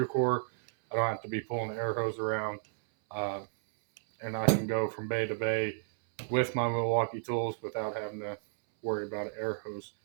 core. I don't have to be pulling the air hose around, and I can go from bay to bay with my Milwaukee tools without having to worry about an air hose.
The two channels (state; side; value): silent; left; 56 dB below the other